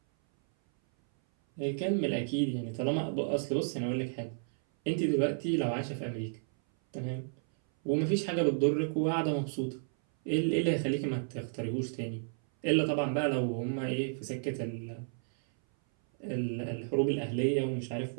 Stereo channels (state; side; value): silent; left; 56 dB below the other